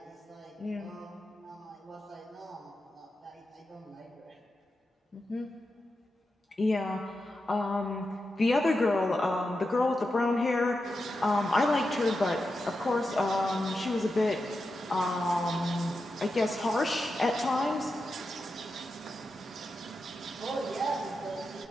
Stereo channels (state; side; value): normal; both; correlation 0.89